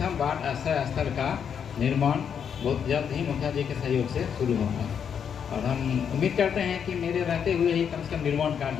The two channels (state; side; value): quieter; right; 7.6 dB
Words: बाढ़ आश्रय स्थल का निर्माण बहुत जल्द ही मुखिया जी के सहयोग से शुरू होगा और हम उम्मीद करते हैं कि मेरे रहते हुए ही कम से कम निर्माण